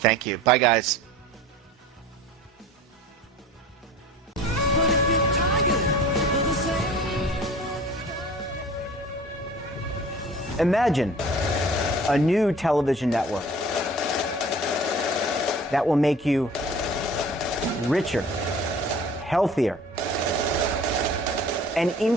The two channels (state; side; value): normal; both; correlation 0.44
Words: you. Bye, guys. Imagine a new television network that will make you richer, healthier, and